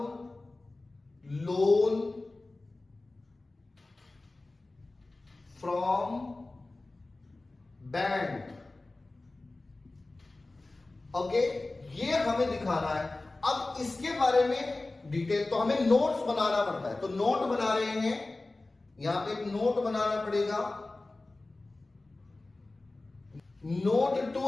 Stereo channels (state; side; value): quieter; right; 3.1 dB